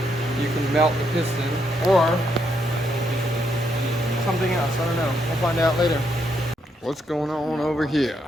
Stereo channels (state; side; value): normal; both; correlation 0.77